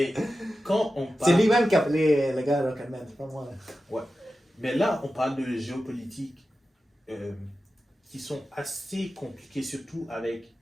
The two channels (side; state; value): both; normal; correlation 0.93